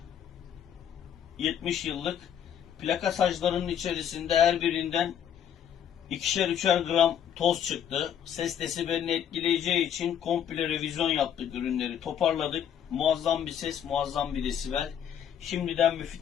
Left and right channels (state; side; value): quieter; right; 9.2 dB